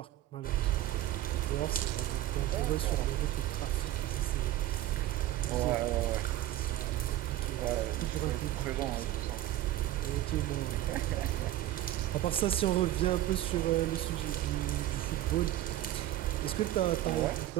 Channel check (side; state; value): left; quieter; 14.1 dB